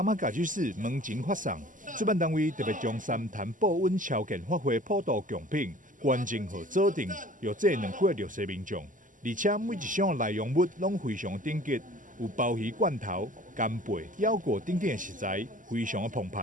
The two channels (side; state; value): left; late; 0.38 ms